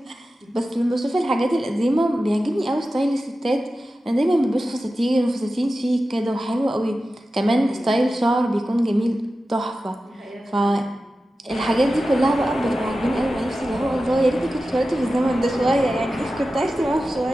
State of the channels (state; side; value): normal; both; correlation 0.93